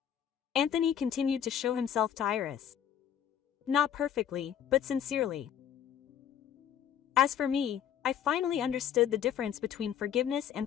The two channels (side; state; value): right; quieter; 9.3 dB